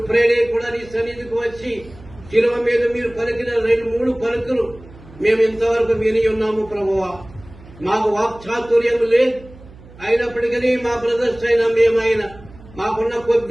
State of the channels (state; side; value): noise; right; hum, 21 dB below the sound